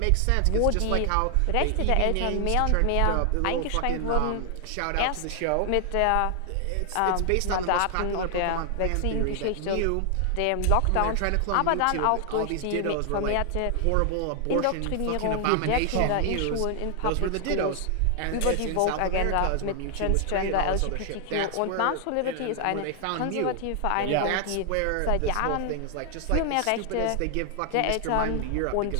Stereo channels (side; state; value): both; different; correlation 0.00